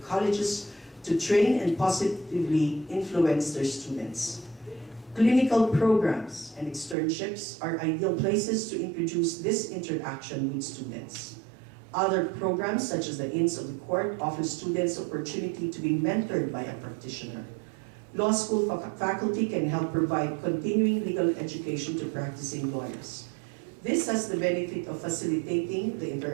colleges to train and positively influence their students. Clinical programs and externships are ideal places to introduce this interaction with students. Other programs, such as the Inns of the Court, offer students opportunity to be mentored by a practitioner. Law school faculty can help provide continuing legal education to practicing lawyers. This has the benefit of facilitating the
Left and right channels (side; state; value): left; drops out; at 7.0 s